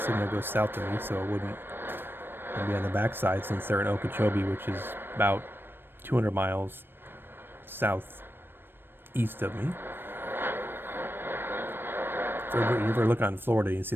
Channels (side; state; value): left; late; 0.098 ms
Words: goes south to me, so it wouldn't be on the backside since they're in Okeechobee, which is about 200 miles southeast of me. If you ever look on Florida, you see